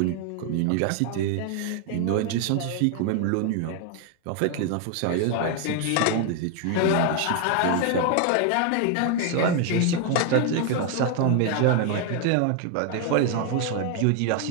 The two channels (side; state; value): both; different; correlation 0.00